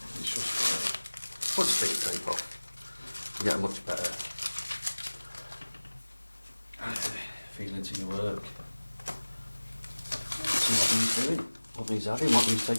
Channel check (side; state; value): both; inverted; correlation -1.00